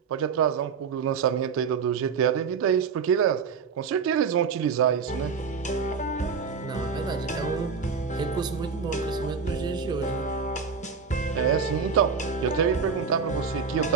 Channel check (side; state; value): left; quieter; 5.9 dB